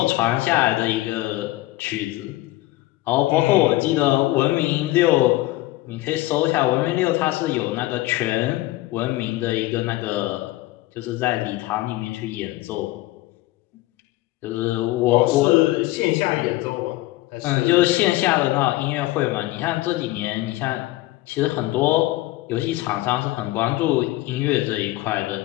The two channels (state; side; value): quieter; right; 17.9 dB